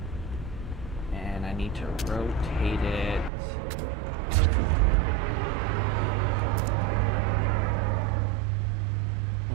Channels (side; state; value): left; drops out; at 3.3 s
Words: and I need to rotate it